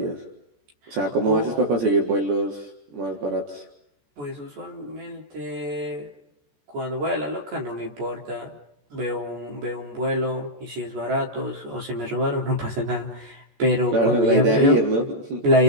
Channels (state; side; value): late; left; 14 ms